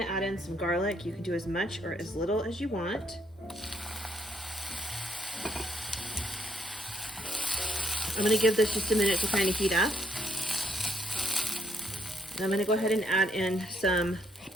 add in some garlic. You can do as much or as little as you want. I'm gonna give this just a minute to kind of heat up. And I'm gonna go ahead and add in some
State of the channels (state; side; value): normal; both; correlation 0.70